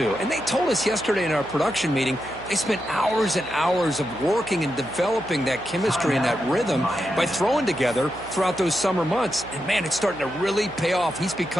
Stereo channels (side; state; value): right; noise; hum, 18 dB below the sound